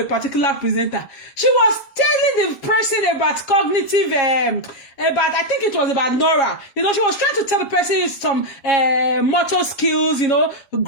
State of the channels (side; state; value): right; late; 7.2 ms